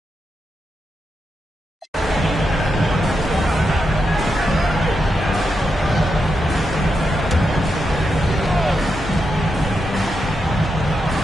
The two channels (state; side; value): normal; both; correlation 0.85